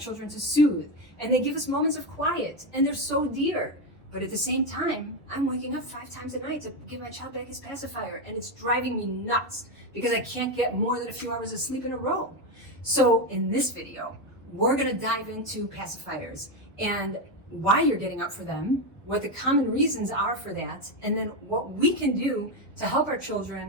to soothe, and they give us moments of quiet, and they're so dear. But at the same time, I'm waking up 5 times a night to give my child back his pacifier, and it's driving me nuts because I can't get more than a few hours of sleep in a row. So in this video, we're gonna dive into pacifiers and why you're getting up for them, what the common reasons are for that, and then what we can do to help our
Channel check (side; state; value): both; normal; correlation 0.10